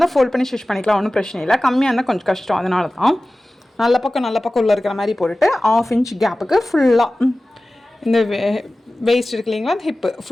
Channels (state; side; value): normal; both; correlation 0.97